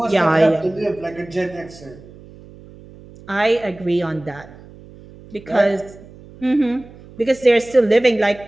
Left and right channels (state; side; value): noise; right; hum, 21 dB below the sound